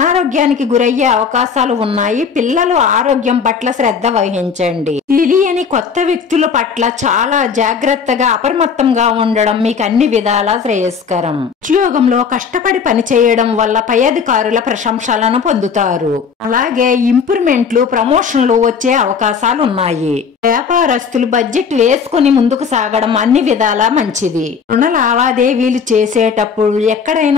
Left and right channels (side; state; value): right; quieter; 6.2 dB